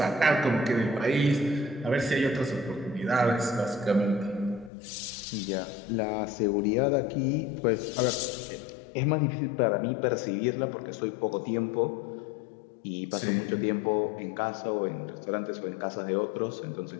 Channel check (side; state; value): right; drops out; at 4.7 s